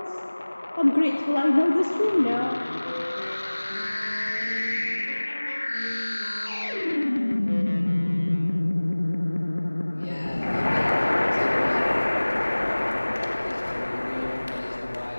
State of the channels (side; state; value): both; inverted; correlation -1.00